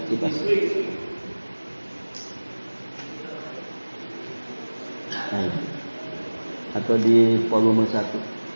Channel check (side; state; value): both; inverted; correlation -1.00